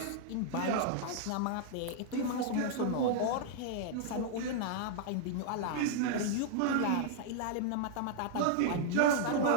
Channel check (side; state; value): both; different; correlation -0.01